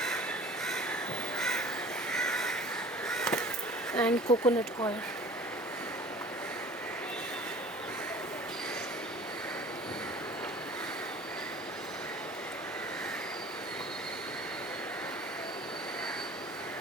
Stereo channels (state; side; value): normal; both; correlation 0.45